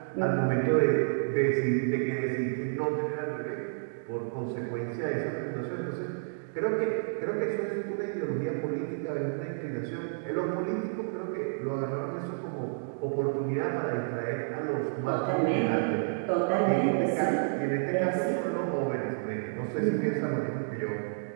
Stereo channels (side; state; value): left; silent; digital silence